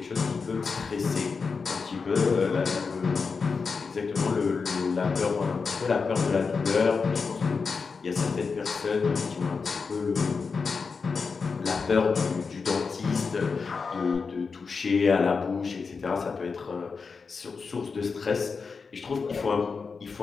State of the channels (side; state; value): right; quieter; 5.0 dB